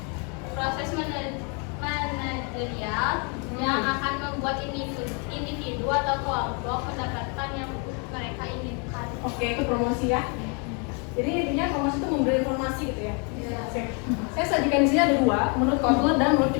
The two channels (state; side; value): quieter; right; 35.2 dB